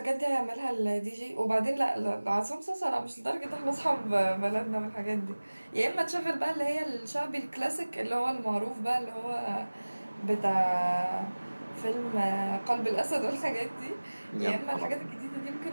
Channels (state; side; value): inverted; both; correlation -1.00